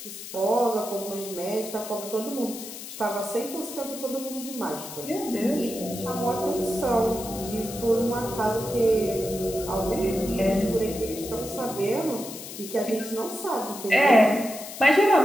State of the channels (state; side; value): noise; left; hiss, 11 dB below the sound